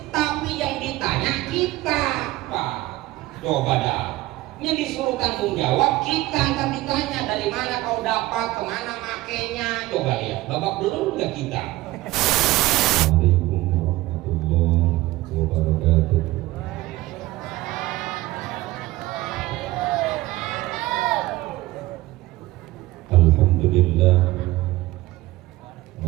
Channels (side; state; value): left; quieter; 18.0 dB